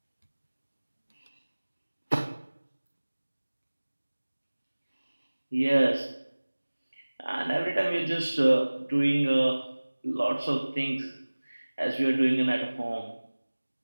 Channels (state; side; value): inverted; both; correlation -1.00